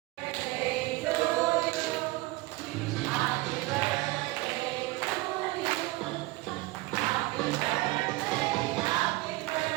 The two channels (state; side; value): quieter; left; 21.1 dB